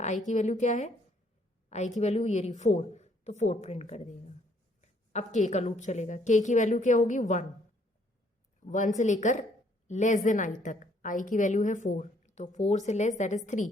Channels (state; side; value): normal; both; correlation 0.66